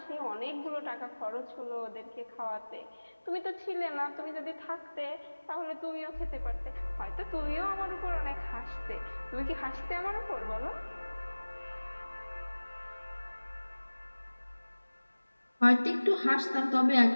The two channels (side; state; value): both; inverted; correlation -1.00